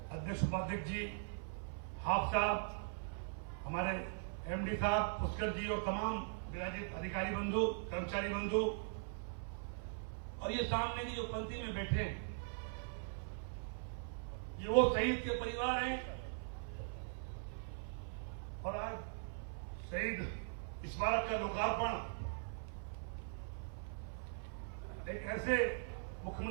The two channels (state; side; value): silent; left; 50 dB below the other